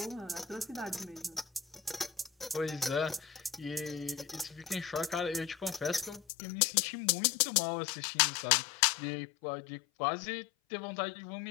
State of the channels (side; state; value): right; drops out; at 6.2 s